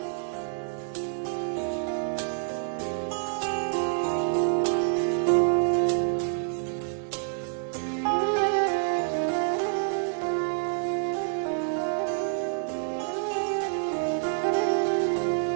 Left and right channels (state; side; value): silent; left; 60 dB below the other